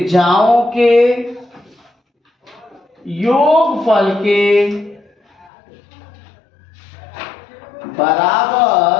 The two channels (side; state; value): right; drops out; at 5.5 s